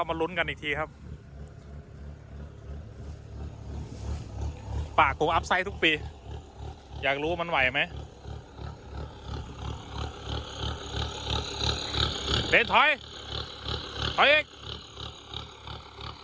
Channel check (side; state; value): both; identical; correlation 1.00